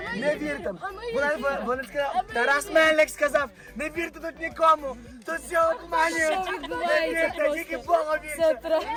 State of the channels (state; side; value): identical; both; correlation 1.00